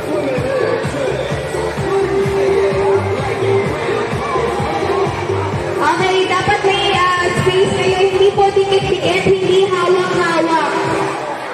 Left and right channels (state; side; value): identical; both; correlation 1.00